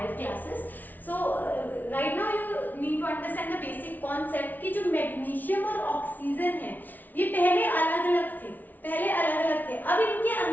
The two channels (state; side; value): late; right; 0.082 ms